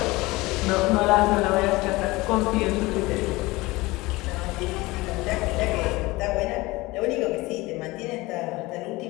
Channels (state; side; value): quieter; right; 21.2 dB